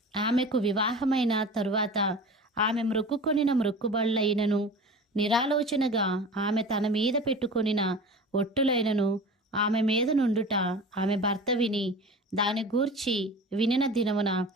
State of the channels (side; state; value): both; normal; correlation 0.36